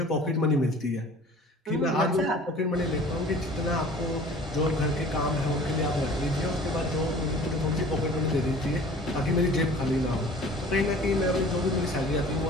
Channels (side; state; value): both; normal; correlation 0.46